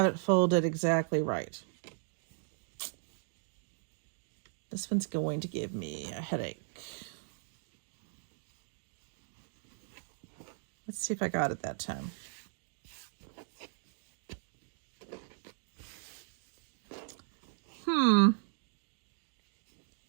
it folded exactly right. This one's going to give me a headache. Let's see if I got it that time.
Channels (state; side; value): silent; left; digital silence